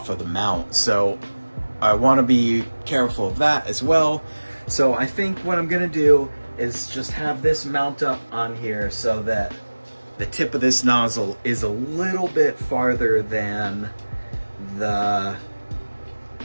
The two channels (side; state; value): both; inverted; correlation -1.00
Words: mount. So I want to be careful of that as well. So I think what I'm gonna do is just have this mount up on here so that the tip of this nozzle is a little bit farther than the